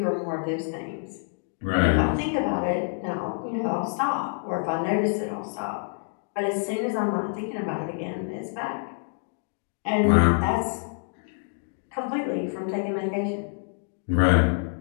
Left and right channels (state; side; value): silent; right; digital silence